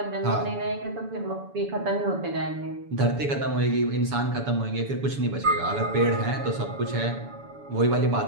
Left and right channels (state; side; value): late; left; 7.0 ms